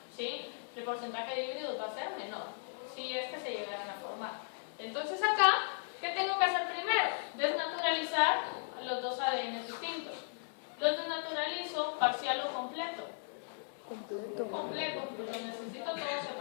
¿sí? El porcentaje de híbridos va a ser menor, si es que se llegaran a formar. Entonces acá, ¿qué tengo que hacer primero? Desnaturalizar los dos ADN distintos. Los desnaturalizo parcial o completo. Completo, pues los necesito todos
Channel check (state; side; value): silent; right; 53 dB below the other